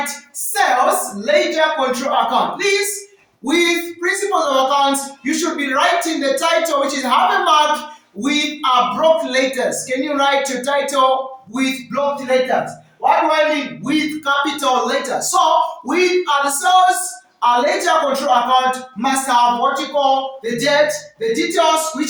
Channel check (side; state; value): both; identical; correlation 1.00